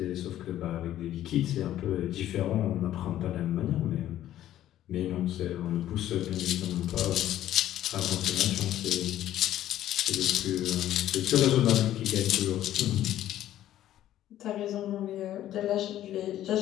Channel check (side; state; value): right; quieter; 12.6 dB